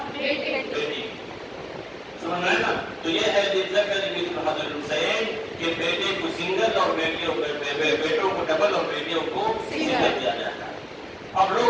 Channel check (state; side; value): identical; both; correlation 1.00